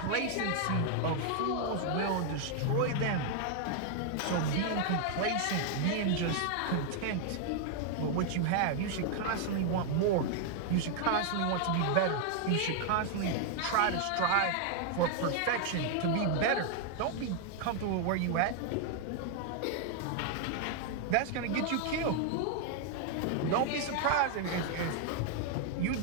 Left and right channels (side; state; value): both; different; correlation 0.00